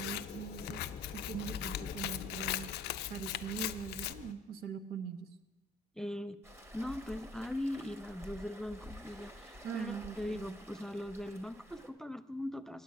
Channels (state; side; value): normal; both; correlation 0.58